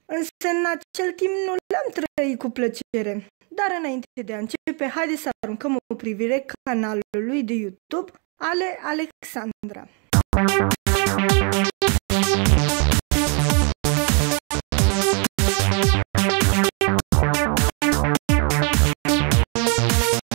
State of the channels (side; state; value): left; quieter; 35.8 dB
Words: însă în acel timp nu le-am trăit cu plăcere. Dar înainte de a începe, haideți să aruncăm o privire canalului de YouTube Ale Alexandra.